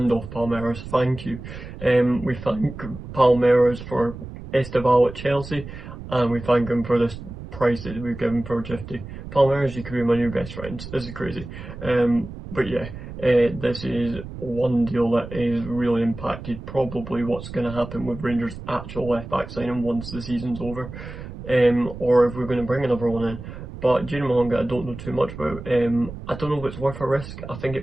off Palmeiras, thank you. We thank Palmeiras for Esteval at Chelsea, and we thank him for this price that we've given for Gifty. Palmeiras, you could be my new best friends. This is crazy. But yeah, this is one deal that is really impacted probably what's going to happen with Rangers' actual left back signing once the season's over, or if we're going to bring another one in. But Junior Mahonga, I don't know too much about. I don't know if it's worth a risk. I think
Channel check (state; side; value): noise; right; rumble, 12 dB below the sound